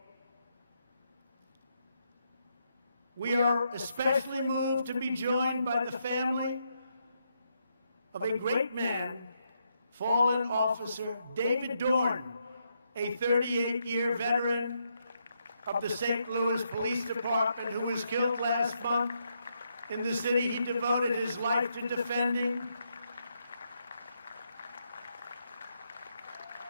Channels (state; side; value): inverted; both; correlation -0.79